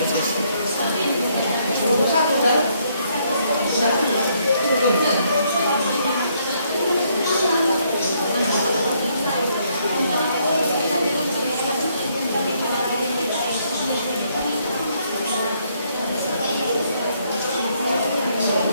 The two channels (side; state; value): both; inverted; correlation -0.71